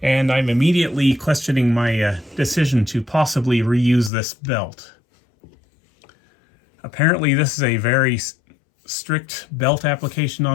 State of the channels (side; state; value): right; drops out; at 4.1 s